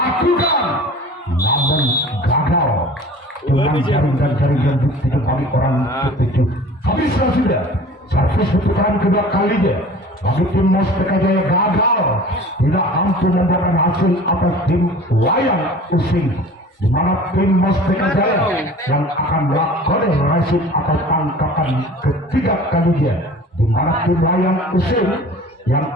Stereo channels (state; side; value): normal; both; correlation 0.43